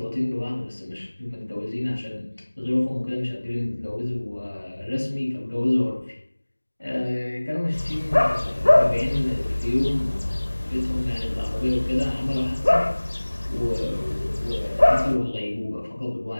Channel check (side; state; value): both; inverted; correlation -1.00